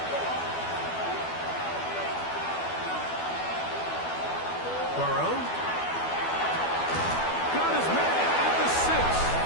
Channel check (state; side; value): late; right; 12 ms